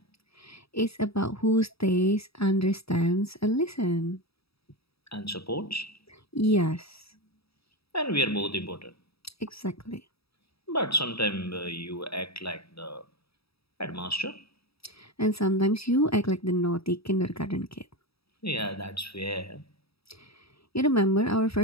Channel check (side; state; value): right; late; 0.77 ms